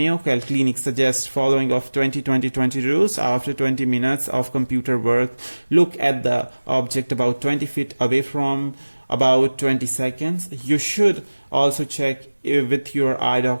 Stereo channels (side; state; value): both; inverted; correlation -1.00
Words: Clinic suggests following of 20-20-20 rules. After 20 minutes of computer work, look at the object about 20 feet away from about 20 seconds. You should also check with your eye